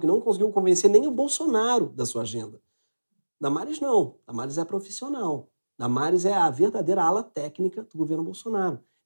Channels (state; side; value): inverted; both; correlation -1.00